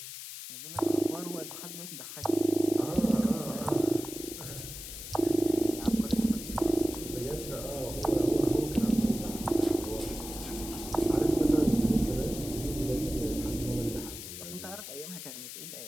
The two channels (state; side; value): noise; left; hiss, 10 dB below the sound